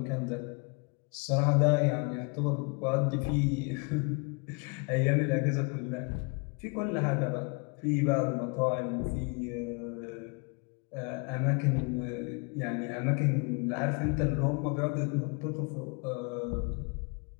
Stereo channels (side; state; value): right; quieter; 32.7 dB